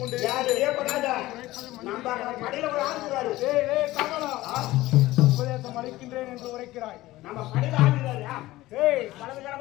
கொண்டு நம்ம கடையில ஒரு ஆளுகிறாரு. உபதேசம் அளிக்கின்றேன் என்று உரைக்கிறாய். நம்ம கடையில ஆளுகிறாரு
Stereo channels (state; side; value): quieter; right; 17.4 dB